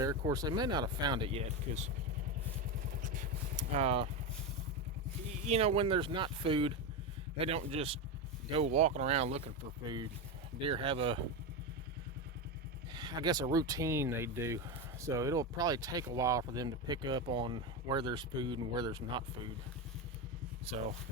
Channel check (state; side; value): normal; both; correlation 0.14